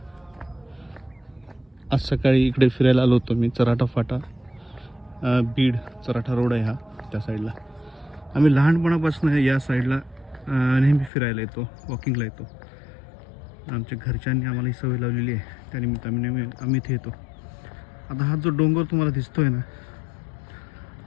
आज सकाळी इकडे फिरायला आलो होतो मी. चराठा फाटा, बीड चराठा रोड आहे हा, त्या साईडला. आम्ही लहानपणापासून या साईडला नेहमी फिरायला येतो, वॉकिंगला येतो. आमच्या घरच्यांनी आम्हाला ही सवय लावलेली आहे, त्यानिमित्ताने आम्ही इथे येतो. आता हा जो डोंगर तुम्हाला दिसतोय ना,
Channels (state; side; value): drops out; right; at 11.1 s